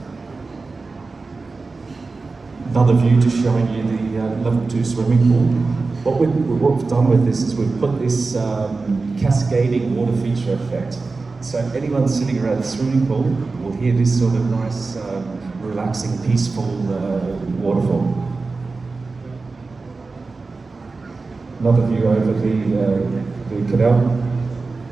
Another view just showing you the level 2 swimming pool. What we've done with this is we've put this cascading water feature effect. So anyone sitting around the swimming pool will hear this sort of nice, relaxing, peaceful waterfall. Another view over the canal.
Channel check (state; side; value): quieter; left; 3.9 dB